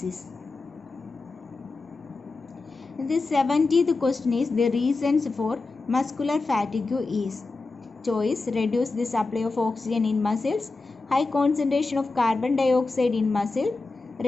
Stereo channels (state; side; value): quieter; right; 3.7 dB